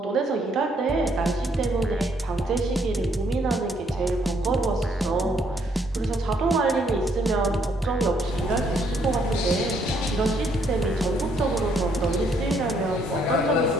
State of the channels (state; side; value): normal; both; correlation 0.69